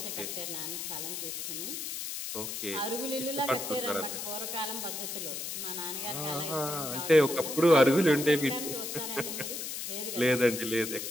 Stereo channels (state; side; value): noise; left; hiss, 5 dB below the sound